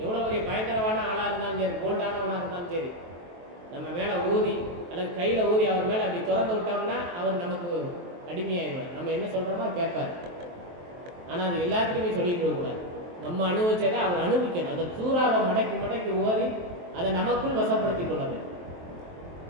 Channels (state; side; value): late; left; 23 ms